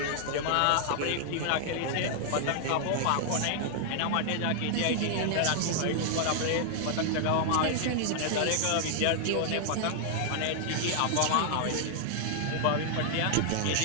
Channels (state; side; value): different; both; correlation -0.01